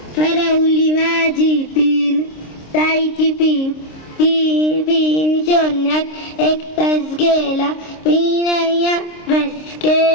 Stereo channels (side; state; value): right; late; 26 ms